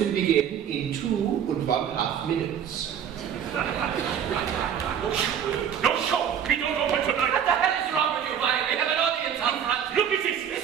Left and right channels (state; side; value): quieter; left; 8.6 dB